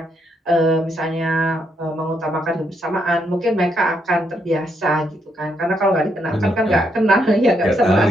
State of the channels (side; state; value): both; normal; correlation 0.77